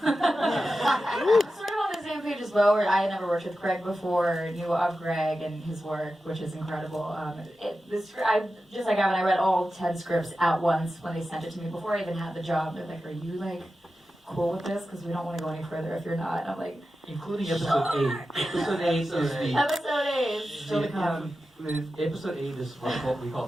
Sort of on the same page as Beau, where I had never worked with Gregg before, knew of Gregg and his work, which is like Avan, I read all 10 scripts at once when they sent it to me before I even had the job. They're like, "Are you cool with this? Because we don't want to go any further if you're not." And I'm like, Including episode 8. Episode 8 is the. episode 8 is still to come. Episode 8 is what we call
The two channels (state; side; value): normal; both; correlation 0.92